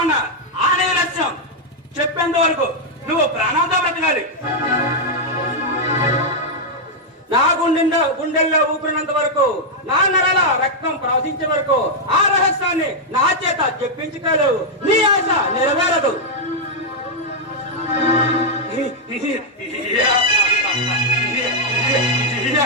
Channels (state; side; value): normal; both; correlation -0.02